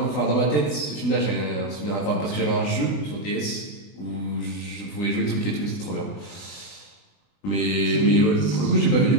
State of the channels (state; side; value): late; right; 20 ms